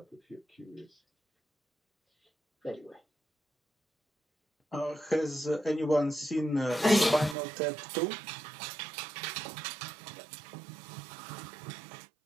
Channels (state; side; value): drops out; left; at 7.4 s